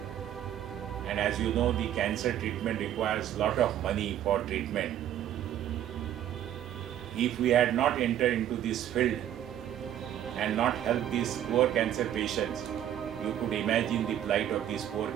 and as you know, the cancer treatment requires a lot of money for treatment. If we had not entered into this field and not helped these poor cancer patients, you could imagine the plight of these poor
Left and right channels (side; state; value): left; quieter; 11.1 dB